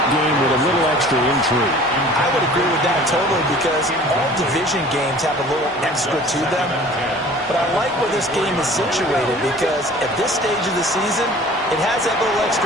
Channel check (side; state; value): both; normal; correlation 0.47